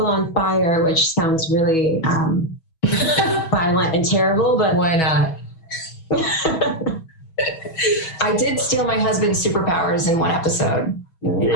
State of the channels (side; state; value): right; late; 6.2 ms